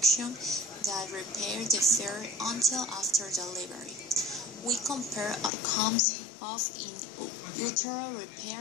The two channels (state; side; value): drops out; right; at 5.5 s